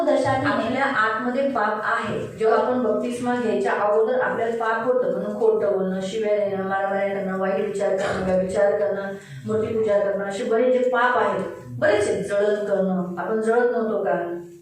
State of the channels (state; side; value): identical; both; correlation 1.00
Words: दर्शाती है. आपल्या आतमध्ये पाप आहे. जेव्हा आपण बपतिस्मा घ्यायच्या अगोदर आपल्याला पाप होतं, म्हणून खोटं बोलणं, शिव्या देणं, मारामाऱ्या करणं, वाईट विचार करणं, व्यभिचार करणं, मूर्तीपूजा करणं, असे बरेच जे पाप आहेत, बरेच आहेत. जळण करणं, आपण जळत नव्हतो का?